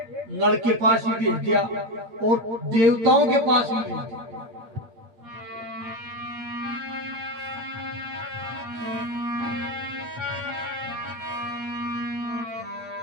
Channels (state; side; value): late; left; 8.5 ms